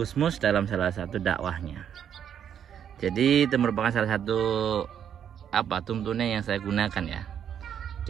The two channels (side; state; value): left; quieter; 8.9 dB